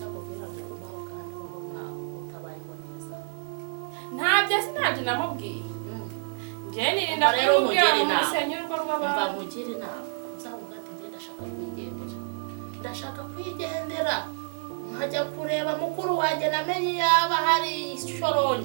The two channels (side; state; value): left; silent; 59 dB below the other